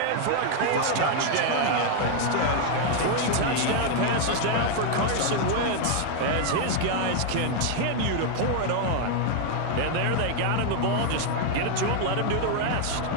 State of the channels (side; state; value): both; different; correlation 0.00